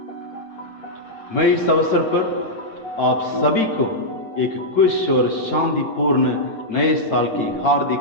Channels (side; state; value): right; late; 9.1 ms